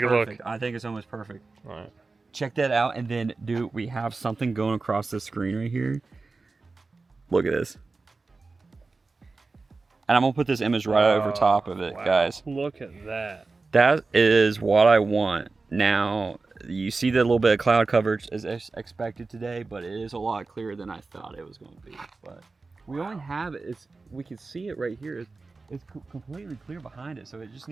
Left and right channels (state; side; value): quieter; left; 3.9 dB